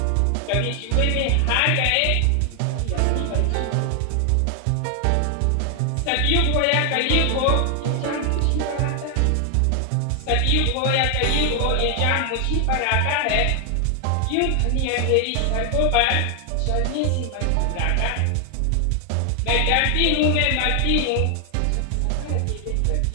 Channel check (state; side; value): different; both; correlation 0.00